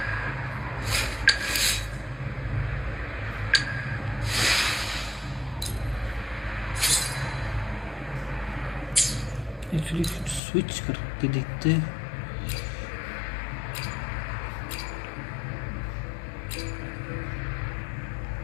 Actually switch करके देखते हैं.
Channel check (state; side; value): drops out; right; at 10.4 s